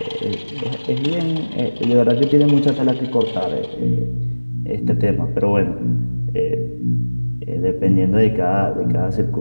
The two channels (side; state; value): both; inverted; correlation -1.00